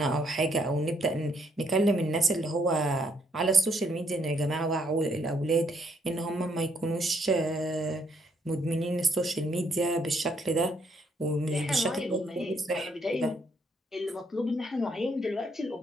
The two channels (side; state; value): both; normal; correlation 0.71